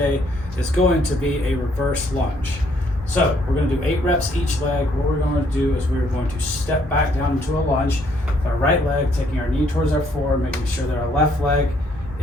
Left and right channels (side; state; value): both; normal; correlation 0.68